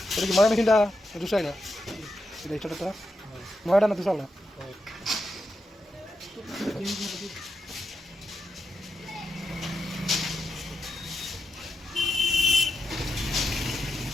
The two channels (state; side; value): normal; both; correlation 0.86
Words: Jadi gimana mesin dah? Rusak ya? Sudah itu dah. Mau ada nanti soalnya.